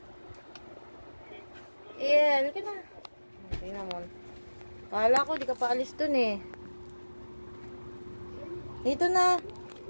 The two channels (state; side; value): inverted; both; correlation -1.00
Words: Ariel, ka na. Okay naman. Kala ko, di ka pa alis dun eh. Dito na.